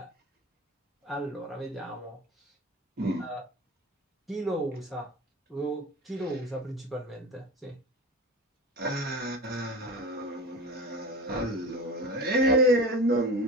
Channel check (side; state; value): both; normal; correlation 0.32